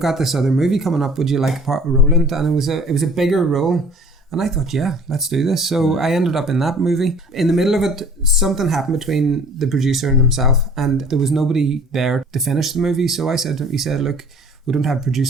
this other movie coming up. Would you like a role in it? And it was a bigger role. And I thought, yeah, let's do this. So I ended up in that movie. In the middle of it, something happened between the producer and himself, and there was nobody there to finish the movie. So he said, look, we don't have a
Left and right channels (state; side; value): normal; both; correlation 0.49